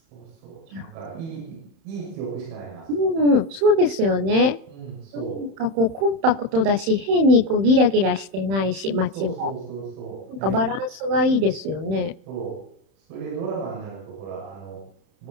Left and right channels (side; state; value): left; late; 31 ms